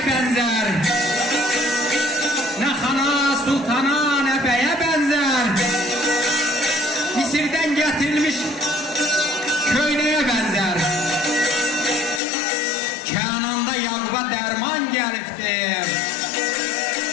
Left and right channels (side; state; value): right; drops out; at 12.2 s